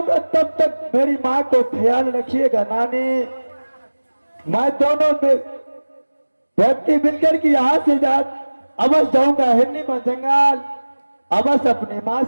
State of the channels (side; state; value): both; inverted; correlation -1.00